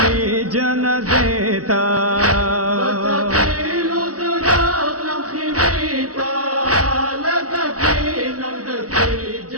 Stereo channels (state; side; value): late; left; 0.67 ms